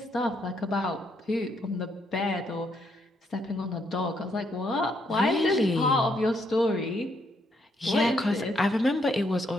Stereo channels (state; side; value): normal; both; correlation 0.74